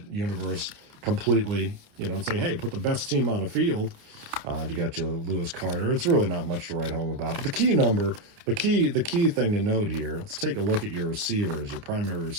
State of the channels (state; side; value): late; left; 29 ms